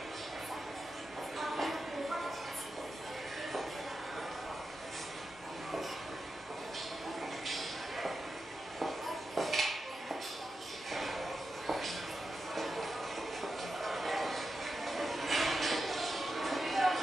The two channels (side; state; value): both; normal; correlation 0.89